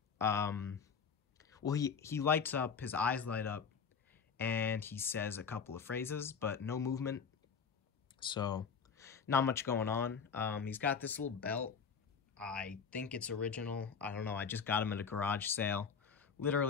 Well, he lights up, his eyes light up, and he says a couple of phrases, but no movement. So, not much going on. He's got this little belt. I think it's original. I don't know. I just got him at a garage sale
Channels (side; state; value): right; quieter; 6.2 dB